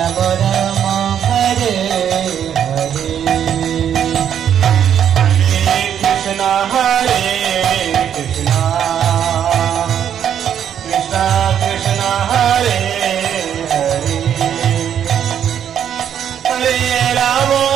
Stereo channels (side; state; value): left; quieter; 9.2 dB